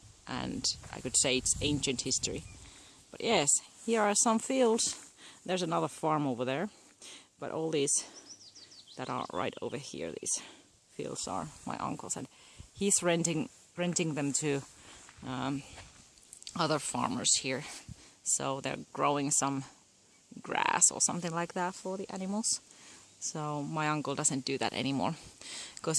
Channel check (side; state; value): both; identical; correlation 1.00